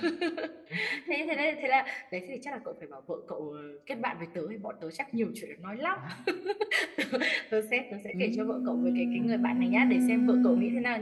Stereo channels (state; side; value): identical; both; correlation 1.00